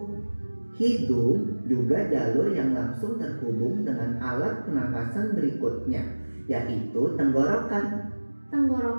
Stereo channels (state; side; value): inverted; both; correlation -1.00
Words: Hidung juga jalur yang langsung terhubung dengan alat pernapasan berikutnya, yaitu tenggorokan.